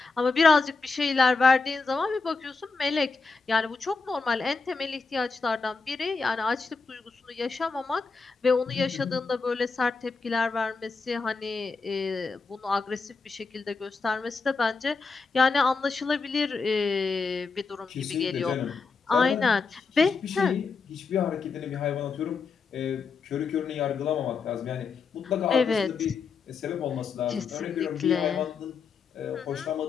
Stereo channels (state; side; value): quieter; right; 4.5 dB